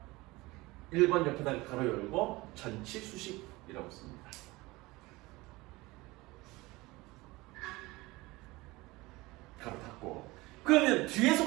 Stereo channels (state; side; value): quieter; left; 21.4 dB